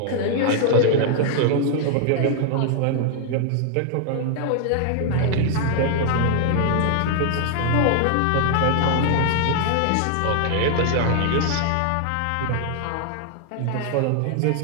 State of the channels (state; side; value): different; both; correlation 0.00